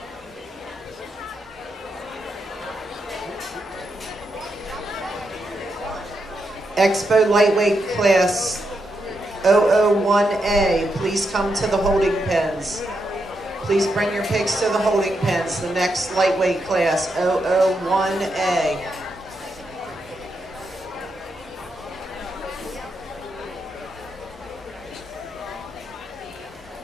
Expo lightweight class 001A, please come to the holding pens. Please bring your pigs to the holding pens. The next lightweight class 001A.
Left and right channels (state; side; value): normal; both; correlation 0.83